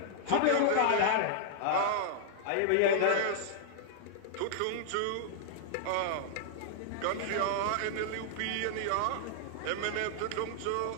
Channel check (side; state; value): both; different; correlation -0.01